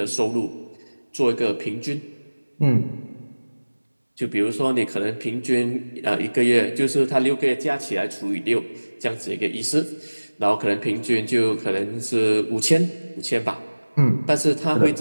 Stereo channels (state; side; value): inverted; both; correlation -1.00